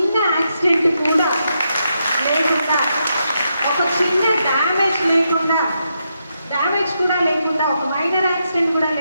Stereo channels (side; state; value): both; inverted; correlation -0.83